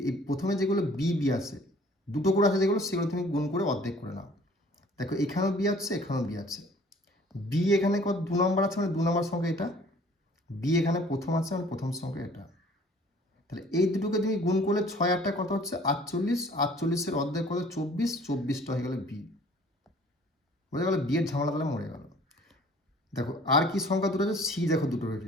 প্রথমে যেগুলো বি আছে, দুটো করে আছে যেগুলো, সেগুলো তুমি গুণ করে অর্ধেক করে নাও। দেখো এখানেও বি আছে, এখানেও বি আছে, বি এখানে কত 2 নম্বর আছে, মানে 2 নম্বর সংখ্যা এটা, বি এখানে প্রথম আছে, মানে প্রথম সংখ্যা এটা, তাহলে এই দুটোকে তুমি গুণ করলে 6 8টা কত হচ্ছে 48, 48-এর অর্ধেক কত 24, 24টা হয়ে গেল বি। বোঝা গেল? বি এর ঝামেলা তাহলে মরে গেল। দেখো আর কি সংখ্যা দুটো আছে, সি দেখো দুটো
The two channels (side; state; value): both; normal; correlation 0.53